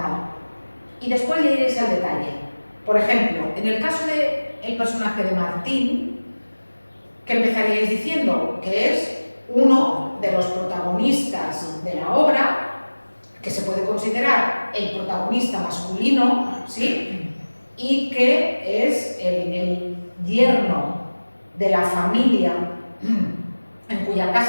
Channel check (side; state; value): both; inverted; correlation -1.00